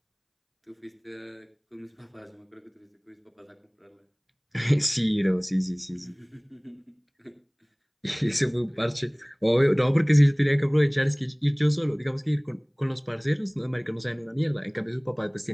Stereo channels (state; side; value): identical; both; correlation 1.00